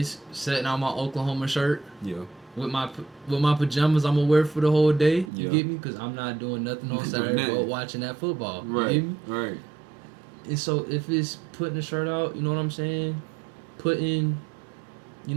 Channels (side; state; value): left; drops out; at 5.3 s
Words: setting out my Oklahoma shirt Yeah. with my pajamas I'm gonna wear for the whole day. You Yeah. get me? Because I'm not doing nothing on Not doing Saturday but nothing. watching that football. You Right. get me? Right. And so if it's putting the shirt out, you know what I'm saying? Putting,